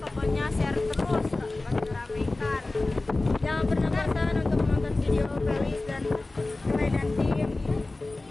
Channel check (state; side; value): quieter; right; 3.1 dB